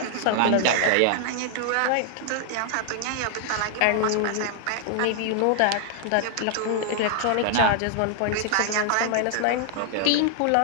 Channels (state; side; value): different; both; correlation 0.00